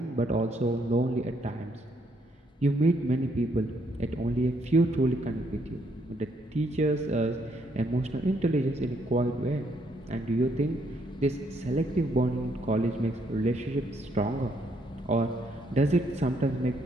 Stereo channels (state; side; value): normal; both; correlation 0.72